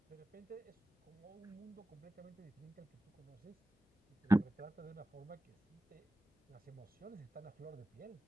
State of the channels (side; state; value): both; normal; correlation 0.94